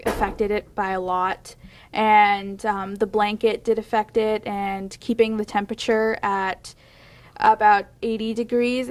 affected it by a lot, and the blanket did affect it, and keeping the temperature at about 80 degrees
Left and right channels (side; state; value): both; identical; correlation 1.00